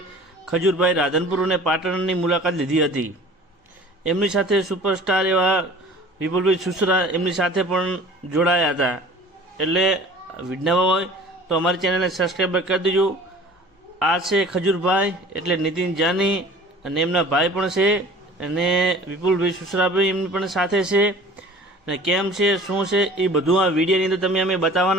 ખજૂરભાઈ રાધનપુર અને પાટણની મુલાકાત લીધી હતી. એમની સાથે સુપરસ્ટાર એવા વિપુલભાઈ સુસરા એમની સાથે પણ જોડાયા હતા. એટલે વિડીયોમાં હોય તો અમારી ચેનલને સબસ્ક્રાઈબ કરી દેજો. આ છે ખજૂરભાઈ એટલે નીતિન જાની અને એમના ભાઈ પણ છે અને વિપુલભાઈ સુસરાભાઈ એમની પણ સાથે છે. અને કેમ છે શું છે એ બધું આ વિડીયોની અંદર તમે અમે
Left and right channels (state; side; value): normal; both; correlation 0.45